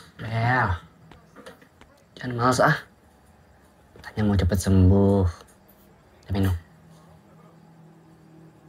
Bel, jangan males ah. Katanya mau cepet sembuh. Udah minum.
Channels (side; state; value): both; identical; correlation 1.00